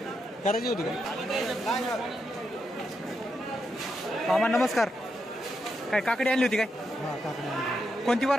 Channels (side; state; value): both; normal; correlation 0.83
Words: करायची होती का? मामा नमस्कार. काय काकडी आणली होती काय? कोणती